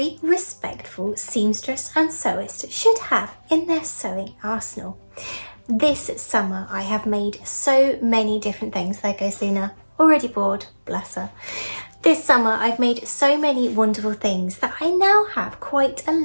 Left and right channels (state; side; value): inverted; both; correlation -1.00